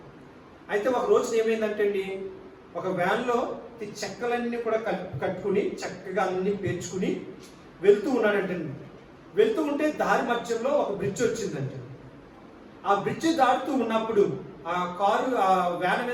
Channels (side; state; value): both; identical; correlation 1.00